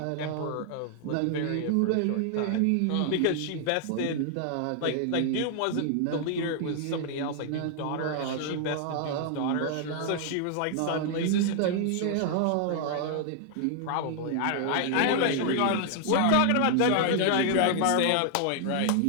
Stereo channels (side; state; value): both; different; correlation 0.00